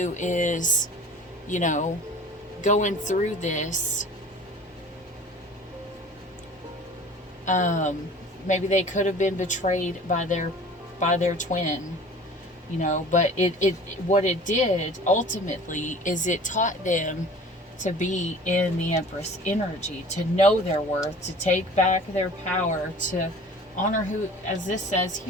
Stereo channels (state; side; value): normal; both; correlation 0.44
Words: is, you know, going through this maybe they could have been betrayed by their twin, you know. But it what it did ultimately is it taught them to be in the Empress energy, to know their worth, to take back their power, to honor who, as this says